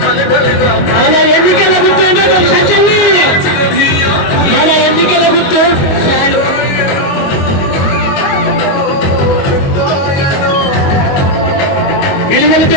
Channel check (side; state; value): right; late; 22 ms